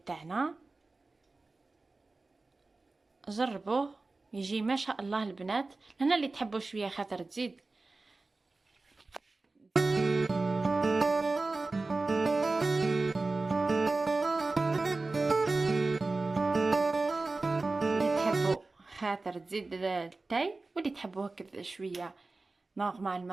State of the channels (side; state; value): left; quieter; 3.5 dB